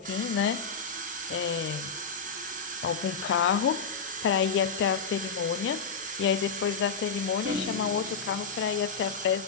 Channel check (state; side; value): quieter; right; 5.4 dB